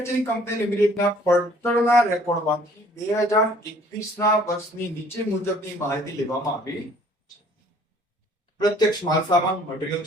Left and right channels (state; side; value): normal; both; correlation 0.57